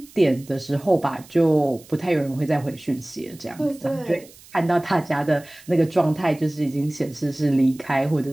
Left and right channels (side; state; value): right; noise; hiss, 23 dB below the sound